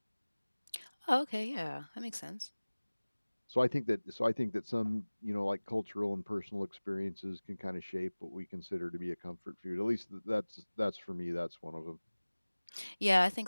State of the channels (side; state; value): both; inverted; correlation -1.00